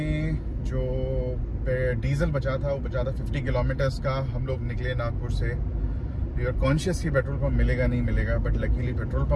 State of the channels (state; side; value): identical; both; correlation 1.00